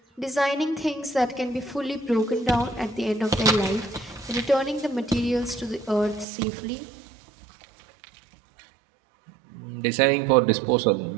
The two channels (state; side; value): drops out; left; at 6.2 s